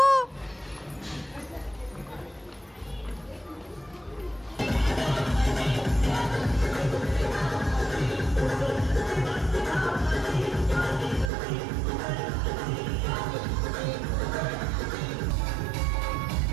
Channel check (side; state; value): left; drops out; at 11.3 s